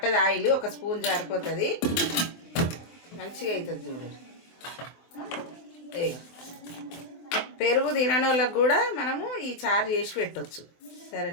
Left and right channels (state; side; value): late; right; 23 ms